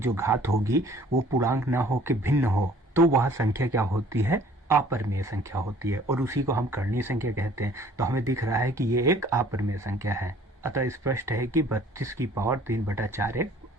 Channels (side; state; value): both; normal; correlation 0.54